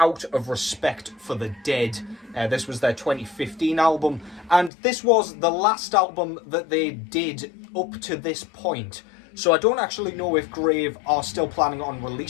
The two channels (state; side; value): drops out; right; at 4.7 s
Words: of Respect for the Dead. This was their 2015 album, and this was the last album that they did up to this point. So I don't actually know if Grave are still planning on